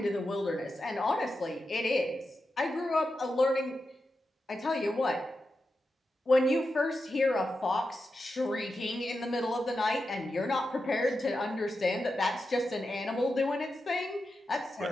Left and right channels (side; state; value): both; normal; correlation 0.89